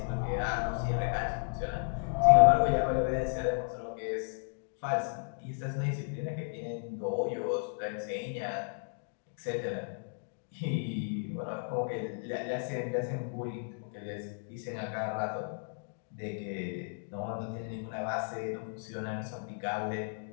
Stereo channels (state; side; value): silent; right; digital silence